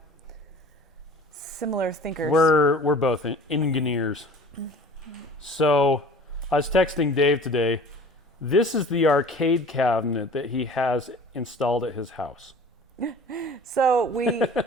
similar thinkers. We're both engineers. So I was texting Dave today. This is the arcade cabinet that he has installed at his house. So we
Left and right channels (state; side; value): normal; both; correlation 0.44